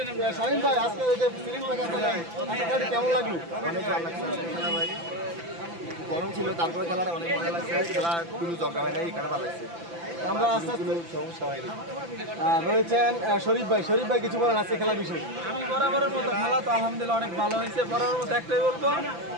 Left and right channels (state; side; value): late; left; 5.9 ms